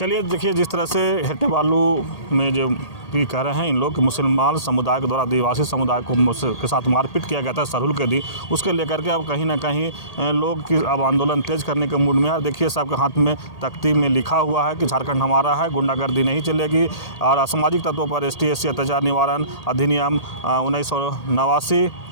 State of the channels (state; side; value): late; right; 1.8 ms